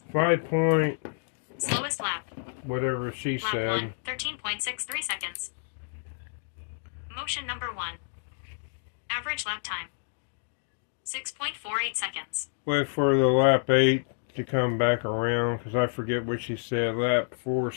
5 point, Slowest lap. whatever she Lap said. 1, 13.63 seconds. Motion number 1. Average lap time. 6.48 seconds. Wait for the lap 8 to come back around, because I forget what she said. Lap 4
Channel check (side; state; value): right; silent; digital silence